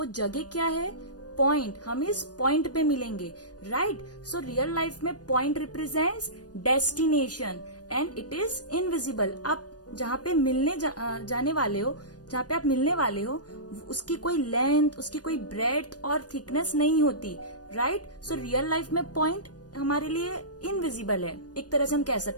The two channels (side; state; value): right; late; 0.69 ms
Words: जगह क्या है? पॉइंट. हम इस पॉइंट पे मिलेंगे, राइट? सो रियल लाइफ में point represents destination and it is invisible. आप जहाँ पे मिलने जाने वाले हो, जहाँ पे आप मिलने वाले हो, उसकी कोई लेंथ, उसकी कोई ब्रेड्थ और थिकनेस नहीं होती, राइट? सो रियल लाइफ में पॉइंट हमारे लिए इनविजिबल है, एक तरह से हम कह